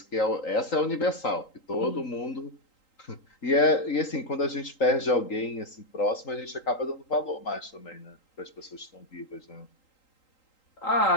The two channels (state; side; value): late; right; 3.8 ms